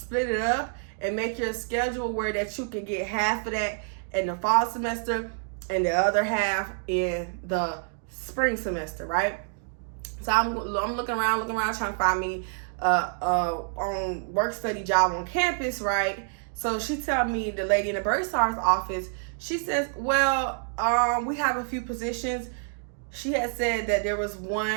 it up and make your schedule where that you can get half of that in the fall semester and the other half in the spring semester, right? So I'm looking around trying to find me on work study job on campus, right? So she tell me, the lady in the Bursar's office, she says, well, we have a few positions. She had said that there was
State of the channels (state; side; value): silent; left; 60 dB below the other